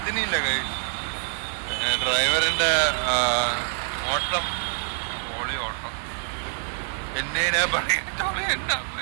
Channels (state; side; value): silent; left; 61 dB below the other